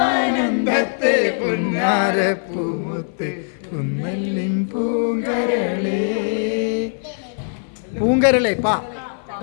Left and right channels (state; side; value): silent; right; 56 dB below the other